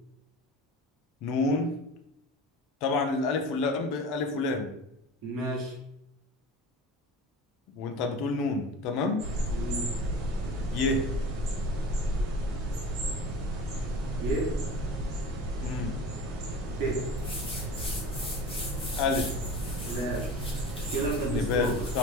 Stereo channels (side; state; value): both; normal; correlation 0.36